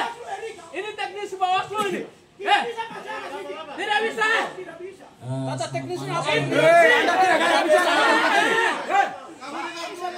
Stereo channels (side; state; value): both; identical; correlation 1.00